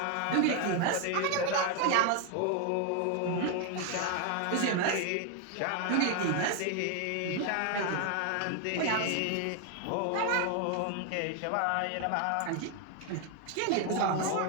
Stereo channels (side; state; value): both; different; correlation 0.01